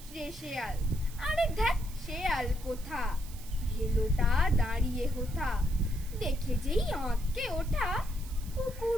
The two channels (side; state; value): right; noise; hiss, 18 dB below the sound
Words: শেয়াল। আরে ধ্যাৎ শেয়াল কোথা, ভেলোটা দাঁড়িয়ে হোথা। দেখে যেই আঁতকে ওঠা,